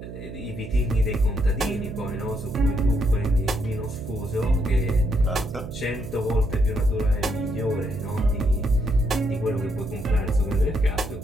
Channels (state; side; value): noise; right; hum, 11 dB below the sound